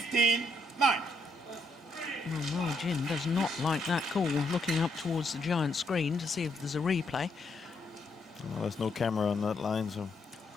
Well, Ma Jin does not like that call, looking up towards the giant screen to see if there's a replay. Well, there's no camera on that line, so...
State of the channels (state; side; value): normal; both; correlation 0.76